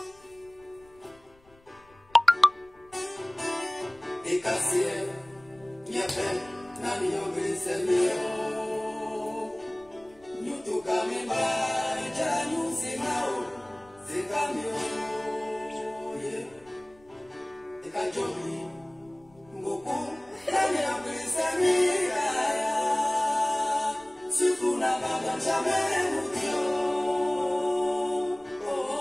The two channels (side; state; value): left; noise; rumble, 29 dB below the sound